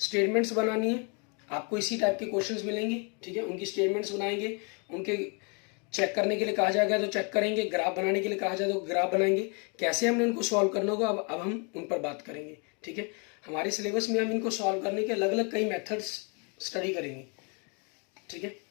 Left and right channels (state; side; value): quieter; right; 35.3 dB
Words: बनानी है। आपको इसी टाइप के क्वेश्चंस मिलेंगे, ठीक है, उनकी स्टेटमेंट्स बनाएंगे, उनके चेक करने के लिए कहा जाएगा तो चेक करेंगे, ग्राफ बनाने के लिए कहा जाए तो ग्राफ बनाएंगे। कैसे हमने उनको सॉल्व करना होगा अब हम उन पर बात करेंगे। ठीक है, हमारे सिलेबस में हम इनको सॉल्व करने के अलग अलग कई मेथड्स स्टडी करेंगे। ठीक है,